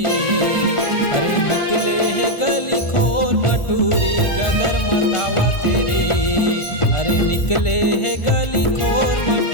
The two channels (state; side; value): late; right; 1.4 ms